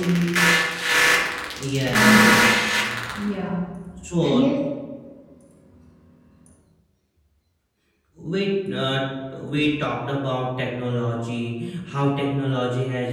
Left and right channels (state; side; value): identical; both; correlation 1.00